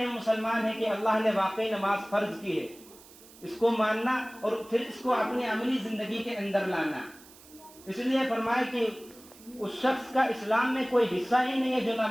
مسلمان ہیں کہ اللہ نے واقعی نماز فرض کی ہے، اس کو ماننا اور پھر اس کو اپنی عملی زندگی کے اندر لانا۔ اس لیے فرمایا کہ اس شخص کا اسلام میں کوئی حصہ ہی نہیں ہے جو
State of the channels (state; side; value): noise; right; hiss, 22 dB below the sound